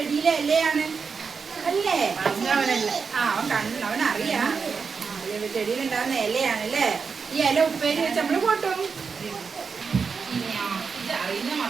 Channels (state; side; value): quieter; left; 5.5 dB